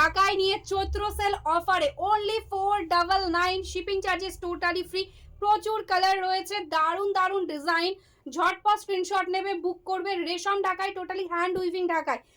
নিয়ে চৈত্র সেল অফারে only 499 shipping charges totally free. প্রচুর কালার রয়েছে, দারুন দারুন ডিজাইন। ঝটপট স্ক্রিনশট নেবে, বুক করবে। রেশম ঢাকায়, টোটালি হ্যান্ড উইভিং ঢাকায়।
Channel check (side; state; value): both; identical; correlation 1.00